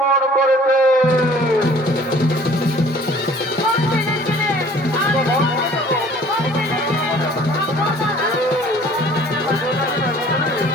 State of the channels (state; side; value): normal; both; correlation 0.52